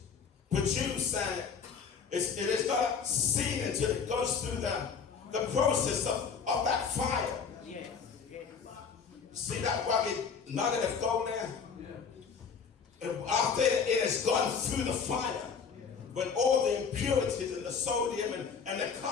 produced and it is not seen until it goes through the process of that fire. See that rugged nugget of gold there? After it has gone through the fire, when all the impurities and the sodium and the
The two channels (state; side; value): quieter; right; 6.1 dB